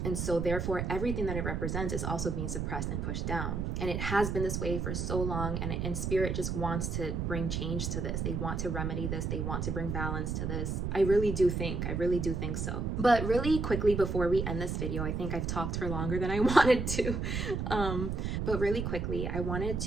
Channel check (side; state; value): right; noise; rumble, 2 dB below the sound